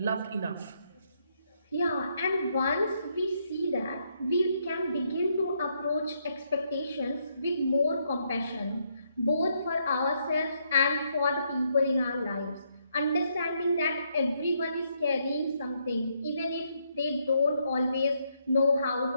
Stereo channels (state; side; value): inverted; both; correlation -0.75